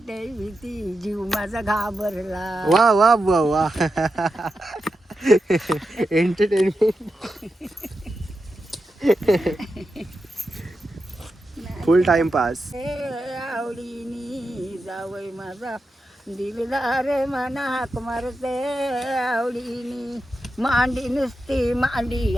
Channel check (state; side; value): normal; both; correlation 0.89